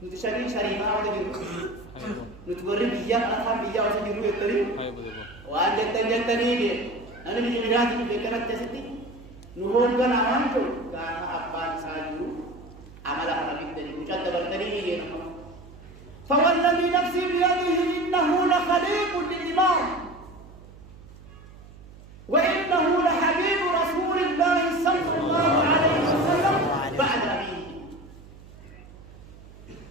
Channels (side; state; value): right; noise; hum, 20 dB below the sound